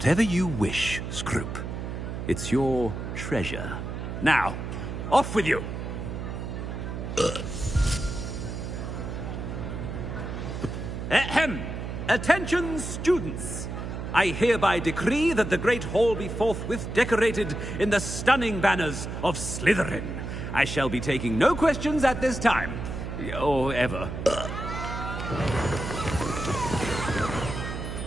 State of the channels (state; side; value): noise; right; hum, 6 dB below the sound